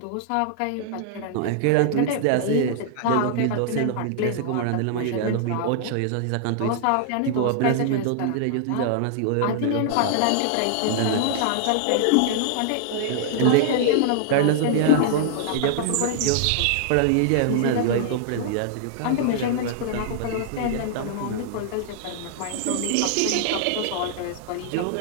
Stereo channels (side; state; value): both; different; correlation -0.01